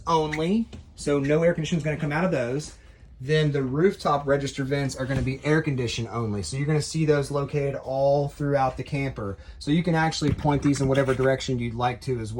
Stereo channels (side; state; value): both; identical; correlation 1.00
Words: only. So no air conditioning is going to come out of those. Then the rooftop register vents are going to be air condition only. So you're going to see those located all throughout the camper. So you can actually point these in whatever direction you'd like to as